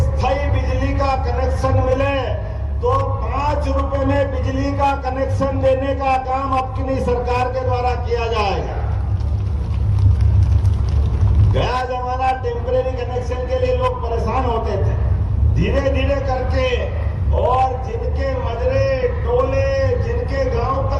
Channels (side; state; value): both; identical; correlation 1.00